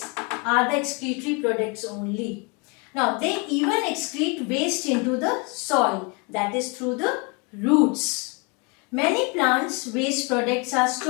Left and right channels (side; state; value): right; quieter; 30.9 dB